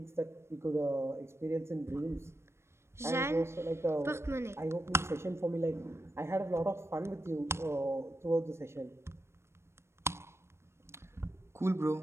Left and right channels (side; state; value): left; late; 0.13 ms